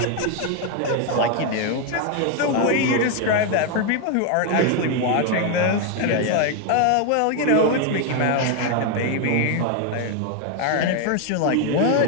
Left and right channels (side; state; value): both; different; correlation 0.01